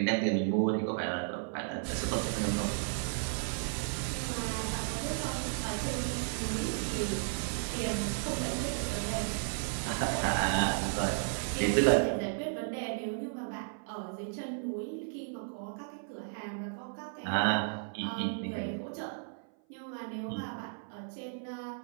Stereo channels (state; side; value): silent; left; 55 dB below the other